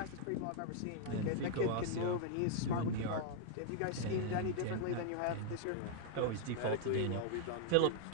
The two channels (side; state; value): both; different; correlation -0.01